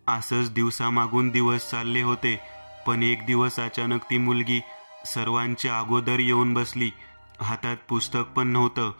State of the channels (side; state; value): both; inverted; correlation -1.00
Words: असंच दिवसामागून दिवस चालले होते. पण एक दिवस अचानक ती मुलगी सर्वांच्या अगोदर येऊन बसली. हातात पुस्तक पण नव्हतं.